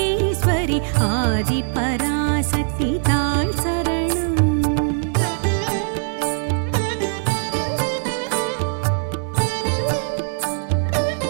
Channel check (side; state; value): left; silent; 65 dB below the other